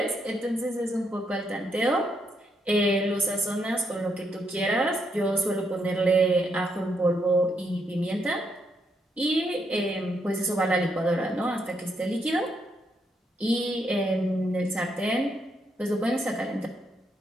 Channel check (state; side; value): normal; both; correlation 0.77